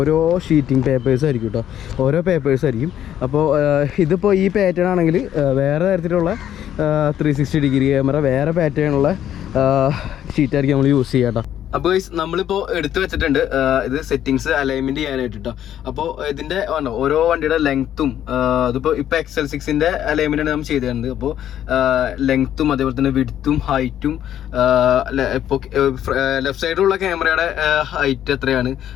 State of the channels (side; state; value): right; quieter; 10.8 dB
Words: ഷീറ്റിംഗ് പേപ്പേഴ്സ് ആയിരിക്കും കേട്ടോ. ഓരോ പേപ്പേഴ്സ് ആയിരിക്കും. അപ്പോൾ ഇതിപ്പോൾ ഈ പാറ്റേൺ ആണെങ്കിൽ വേറെ തരത്തിലുള്ള 360 ഡിഗ്രി ക്യാമറ വേറെ പാറ്റേണുള്ള ഷീറ്റായിരിക്കും നമ്മൾ യൂസ് ചെയ്യാം കേട്ടോ. അപ്പോൾ നമ്മളിപ്പോൾ എടുത്തു വെച്ചിട്ടുണ്ട് ഇത് സെറ്റിങ്സ് അലൈൻമെൻറ്റ് ചെയ്യാനായിട്ട് കേട്ടോ. അപ്പോൾ ഇതിൻ്റെ ഓരോ വണ്ടിയുടെ ലെങ്ത്തും അതിപ്പോൾ XL6ൻ്റെ അലൈൻമെൻറ്റാണ് നമ്മൾ ചെയ്ത് തരുന്നത്. അപ്പോൾ ലെങ്ത്തും അതേപോലെ തന്നെ വിഡ്ത്തും ഹൈറ്റും ഇപ്പോൾ ലെഫ്റ്റ് സൈഡിലുള്ള ക്യാമറയുടെ ഹൈറ്റ് എത്രയാണ്,